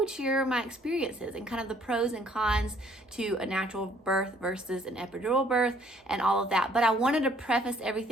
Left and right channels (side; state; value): both; normal; correlation 0.62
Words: share my experiences and kind of the pros and cons to a natural birth versus an epidural birth and all of that. But I wanted to preface